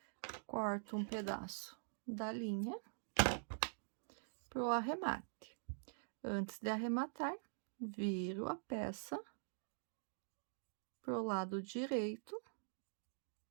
Corto um pedaço da linha pro arremate. Antes de arrematar, viro a peça pro lado direito,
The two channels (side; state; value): left; silent; digital silence